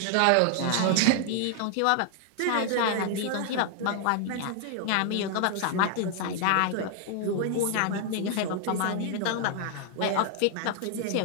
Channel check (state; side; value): different; both; correlation 0.00